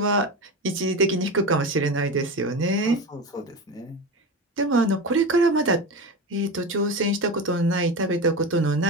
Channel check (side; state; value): both; normal; correlation 0.24